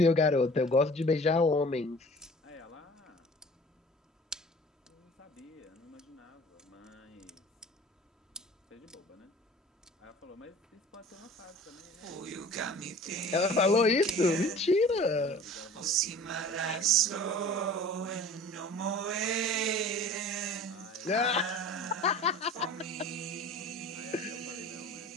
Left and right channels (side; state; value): both; normal; correlation 0.44